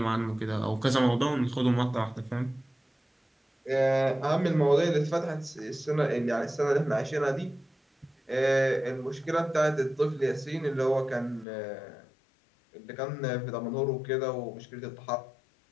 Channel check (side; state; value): right; drops out; at 11.5 s